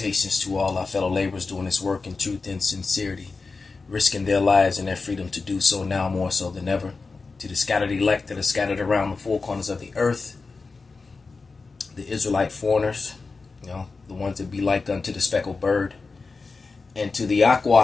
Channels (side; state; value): right; quieter; 4.2 dB